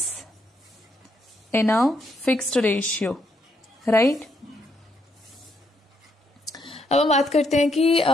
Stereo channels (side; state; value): both; normal; correlation 0.75